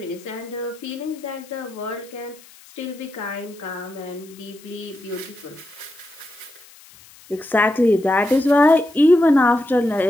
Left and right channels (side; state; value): left; noise; hiss, 23 dB below the sound